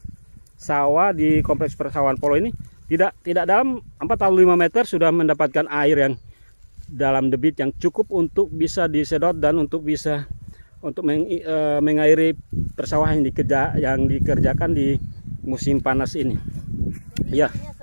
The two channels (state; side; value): inverted; both; correlation -1.00